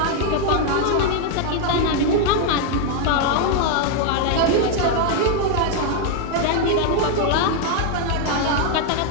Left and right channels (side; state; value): both; different; correlation 0.01